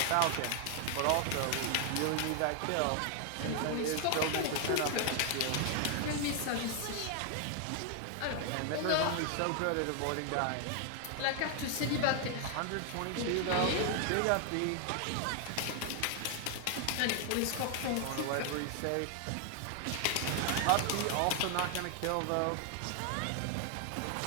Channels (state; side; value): different; both; correlation 0.00